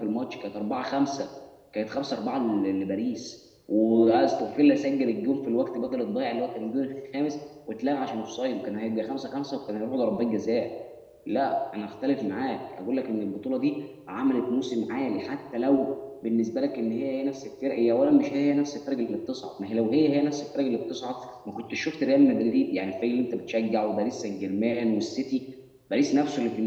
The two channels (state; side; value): identical; both; correlation 1.00